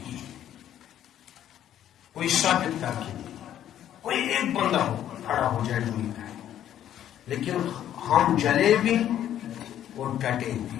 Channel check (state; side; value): quieter; right; 11.1 dB